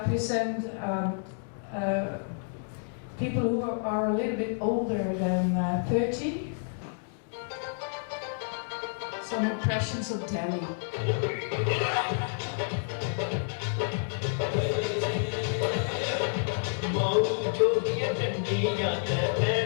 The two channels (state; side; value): silent; right; digital silence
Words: people who are a little bit older than 30. Some impressions of Delhi.